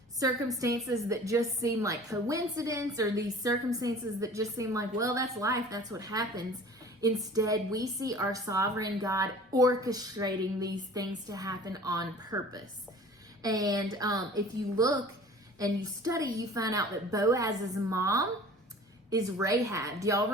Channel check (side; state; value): both; normal; correlation 0.45